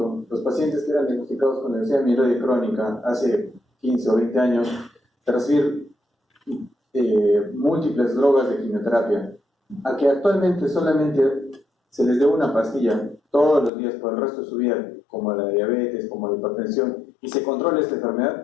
los pacientes que eran diagnosticados con leucemia mieloide crónica hace 15 o 20 años, de recibir múltiples drogas de quimioterapia, a que actualmente solamente se les dé una pastilla todos los días por el resto de su vida, como la diabetes, como la hipertensión, y se controla esta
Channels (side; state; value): right; drops out; at 13.7 s